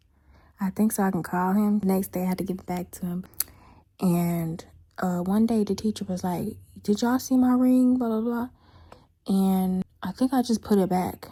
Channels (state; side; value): identical; both; correlation 1.00